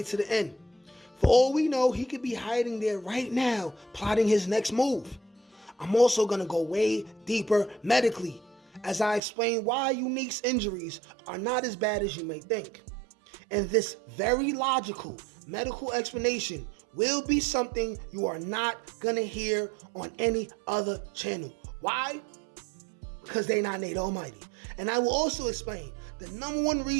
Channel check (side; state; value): left; drops out; at 9.2 s